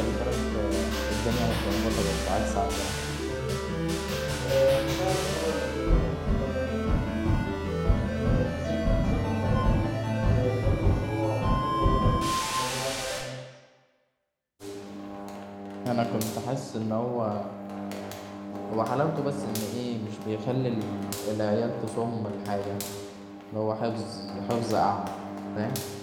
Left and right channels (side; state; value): both; identical; correlation 1.00